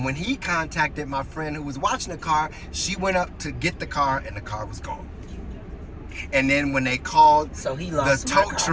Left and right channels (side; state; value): both; identical; correlation 1.00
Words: when he contacted my friend who was watching the car, she went up to get the car and the car was gone. And then when they called the tow